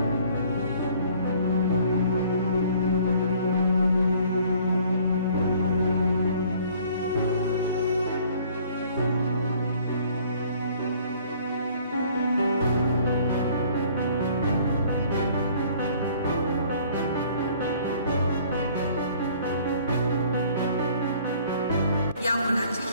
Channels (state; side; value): inverted; both; correlation -0.56